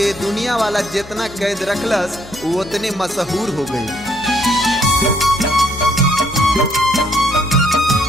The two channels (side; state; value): both; normal; correlation 0.68